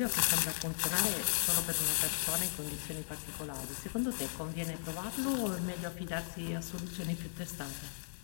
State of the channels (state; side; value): silent; right; digital silence